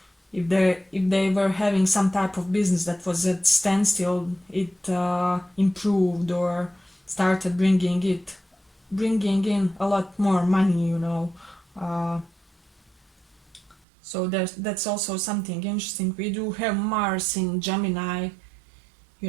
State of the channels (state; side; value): drops out; left; at 13.8 s